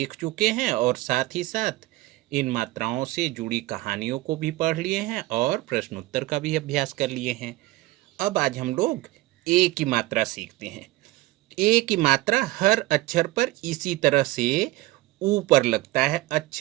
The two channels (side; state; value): left; quieter; 18.6 dB